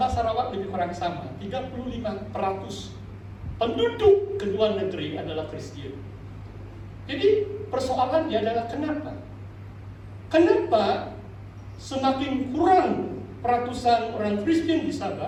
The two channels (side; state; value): both; identical; correlation 1.00